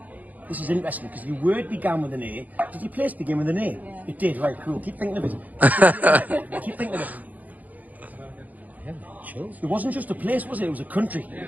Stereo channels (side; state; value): left; late; 0.079 ms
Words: This is interesting because your word began with an A. Did your place begin with an A? Yeah. It did, right, cool. Keep thinking of it. Keep thinking of it. Chills. It wasn't just a place, was it? It was a country.